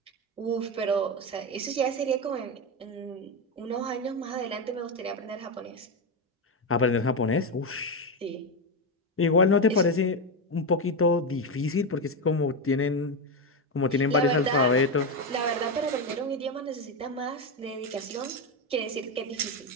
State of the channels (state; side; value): normal; both; correlation 0.11